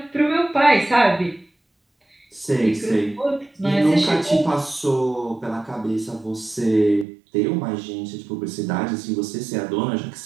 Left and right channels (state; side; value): drops out; left; at 7.1 s